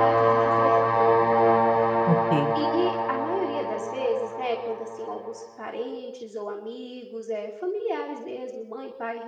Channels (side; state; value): both; identical; correlation 1.00